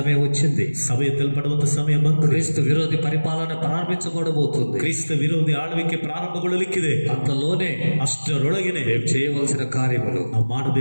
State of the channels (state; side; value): inverted; both; correlation -1.00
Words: వచ్చింది. ಸಭೆ ಎತ್ತಲ್ಪಡುವಂತ ಸಮಯ ಬಂದು క్రీస్తు విరోధి పరిపాలన ప్రారంభించబడబోతుంది. ಕ್ರಿಸ್ತ ವಿರೋಧಿ ಆಳ್ವಿಕೆ ಪ್ರಾರಂಭಗೊಳ್ಳಲಿಕ್ಕಿದೆ. అంతలోనే ಅಷ್ಟರೊಳಗೆನೆ మేము చేయవలసిన కార్యములు ನಾವು